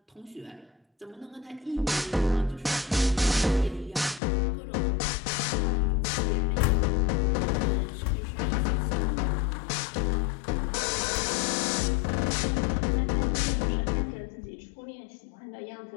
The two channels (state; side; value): drops out; right; at 4.2 s